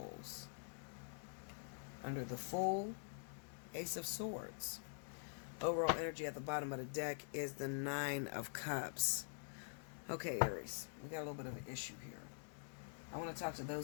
Under the Fool, Ace of Swords. Overall energy at the bottom of the deck is the 9 of Cups. Okay, Aries, we got a little bit of an issue here. I want to talk to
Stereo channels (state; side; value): silent; right; digital silence